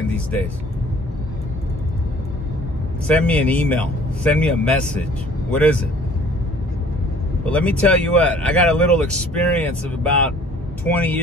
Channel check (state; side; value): normal; both; correlation 0.53